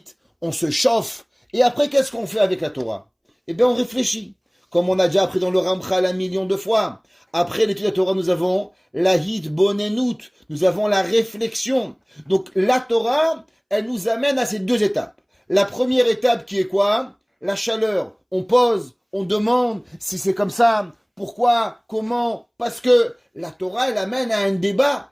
on se chauffe, et après, qu'est-ce qu'on fait avec la Torah? Eh bien, on réfléchit. Comme on a déjà appris dans le Ramchal 1 million de fois. Après l'étude de la Torah, nous avons la hitbonenut, nous avons la réflexion. Donc, la Torah, elle nous amène à ces deux étapes. La première étape qui est quoi? La chaleur. On pose, on demande si c'est comme ça, pourquoi, comment, parce que la Torah, elle amène à un débat.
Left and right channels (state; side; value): identical; both; correlation 1.00